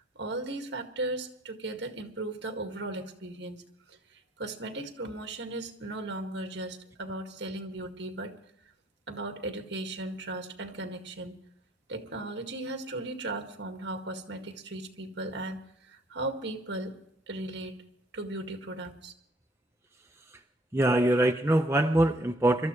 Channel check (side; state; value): both; normal; correlation 0.62